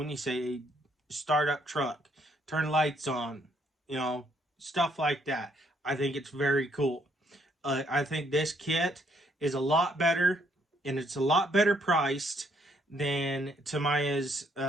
you say start up truck, turn lights on, you know, stuff like that. I think it's very cool. I think this kit is a lot better, and it's a lot better priced than Tamiya's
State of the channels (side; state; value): both; normal; correlation 0.70